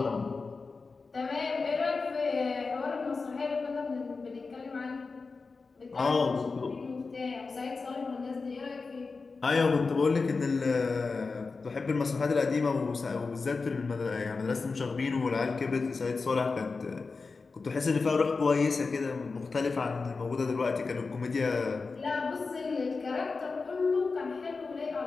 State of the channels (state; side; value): quieter; right; 4.3 dB